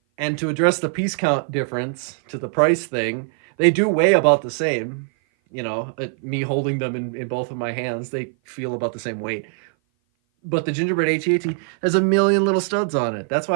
And to address the piece count difference to the price thing, they do weigh about the same. You know, me holding them in both of my hands, they feel about the same weight. But the gingerbread AT-AT has a million little studs on it. That's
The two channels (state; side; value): silent; left; 57 dB below the other